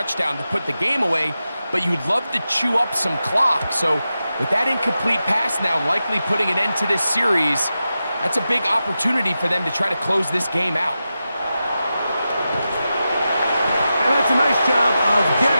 to put the game away, but you'd love to chew up some clock. So with that incomplete pass now likely putting an end to this series, that's a big opportunity for them to try to close this game out. And that's a nice job of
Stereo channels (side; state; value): both; inverted; correlation -0.91